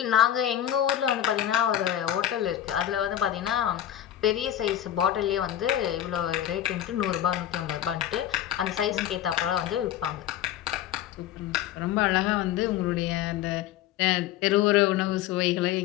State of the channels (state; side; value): quieter; right; 11.6 dB